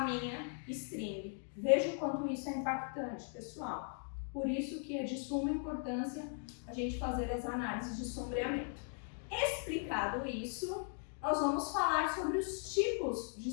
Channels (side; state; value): right; silent; 52 dB below the other